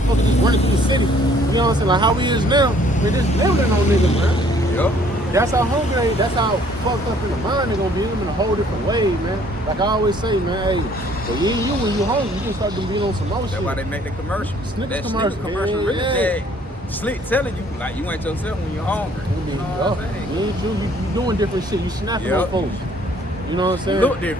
just running through the city. You know what I'm saying? Like how we is now, man, just living on niggas, man. Yep. That's how hungry, that's how fucked up in the mind they're gonna be in a whole different way, man. Like I always say, man, hey, but when you hungry, you can start to be on some more shit. That's why they make the commercials. Snickers that commercial, commercial really yeah. Slick telling you, like, you ain't yourself when you're hungry. You know what I'm saying? You ain't you doing different shit. You snapping on folks. You know what I'm saying? You look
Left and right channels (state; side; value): normal; both; correlation 0.60